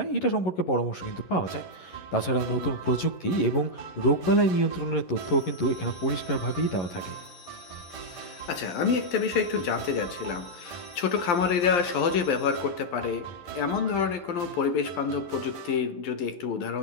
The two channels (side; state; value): right; late; 11 ms